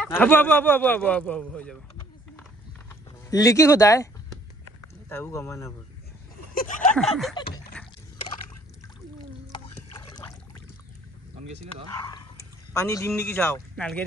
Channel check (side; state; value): both; normal; correlation 0.60